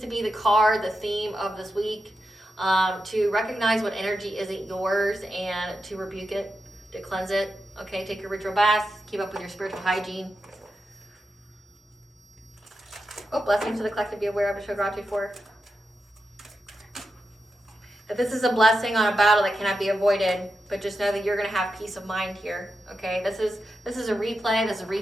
be the card, the theme of this week. To recognize what energy isn't yours and to rebuke it, to cleanse it. Okay, take your ritual baths, keep up with your spiritual hygiene. Oh, blessings to the collective, be aware of and show gratitude for. That this is a blessing on a battle that cannot be avoided, but just know that you're going to have peace of mind here. Okay, this is a replay, this is a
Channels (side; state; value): both; normal; correlation 0.88